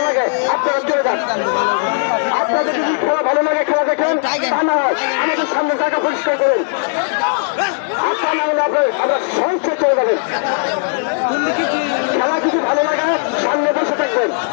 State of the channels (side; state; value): right; silent; digital silence